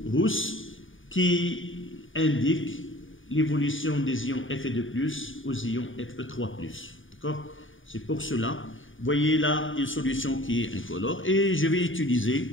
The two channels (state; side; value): late; right; 0.57 ms